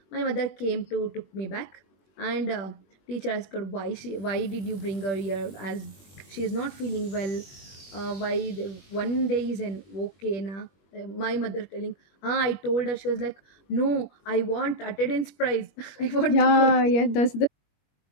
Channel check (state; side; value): late; right; 21 ms